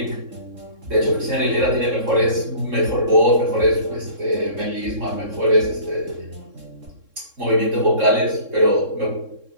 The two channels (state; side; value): late; left; 3.7 ms